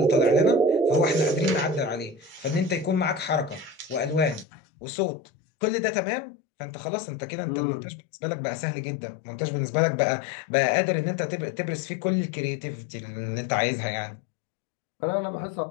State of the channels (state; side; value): drops out; right; at 4.5 s